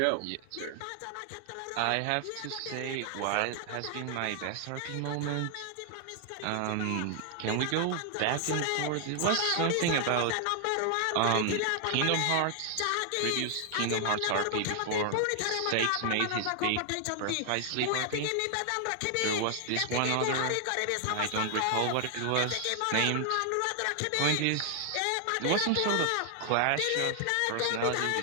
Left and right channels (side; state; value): both; different; correlation 0.00